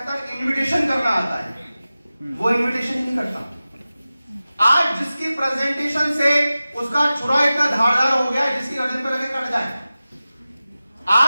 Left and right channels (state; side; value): inverted; both; correlation -0.96